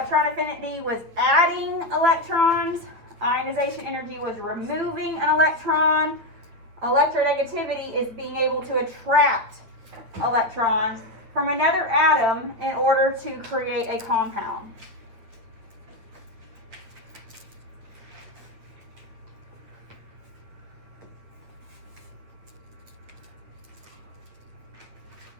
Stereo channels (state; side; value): late; left; 8.8 ms